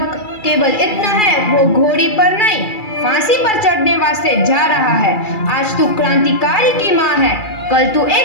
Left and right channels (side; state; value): right; late; 2.3 ms